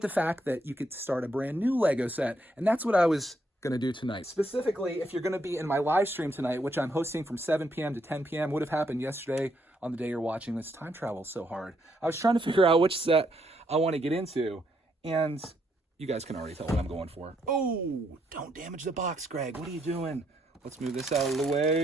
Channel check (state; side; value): normal; both; correlation 0.75